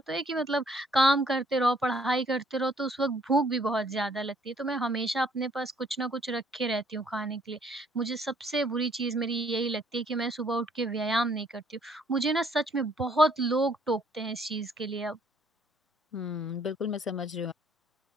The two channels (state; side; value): normal; both; correlation 0.64